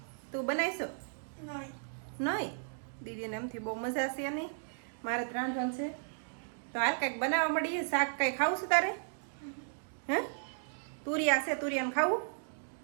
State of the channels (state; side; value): silent; left; digital silence